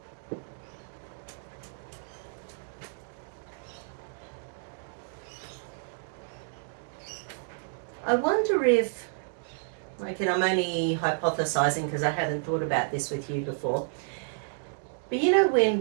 I wonder if, and I'm only hypothesizing because I hadn't thought about this with you before, but you know when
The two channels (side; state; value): left; silent; digital silence